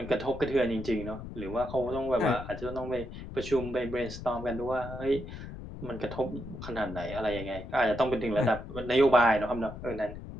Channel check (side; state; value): left; noise; rumble, 10 dB below the sound